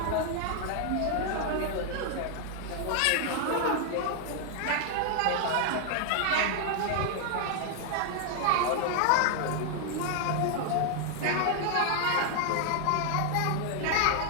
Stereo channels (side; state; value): both; different; correlation 0.00